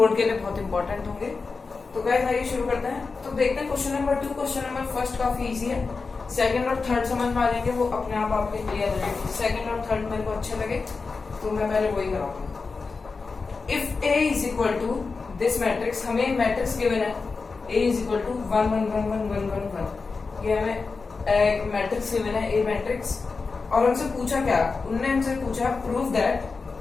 के लिए बहुत इंपॉर्टेंट होंगे। तो गाइस आइए शुरू करते हैं। तो देखते हैं question number 2। Question number first काफी इजी है, सेकंड और थर्ड समझ में आ जाएंगे, वो अपने आप आपके क्लियर हो जाएंगे। सेकंड और थर्ड मेरे को अच्छे लगे तो मैं पहले वही कराऊंगा। If A is equal to this matrix, हमें मैट्रिक्स गिवन है ए इज इक्वल टू 1 1 1 1 1 1 1। ये हमें एक मैट्रिक्स गिवन है ए मैट्रिक्स, और हमसे पूछा क्या, उनने हमसे पूछा prove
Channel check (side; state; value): right; quieter; 4.4 dB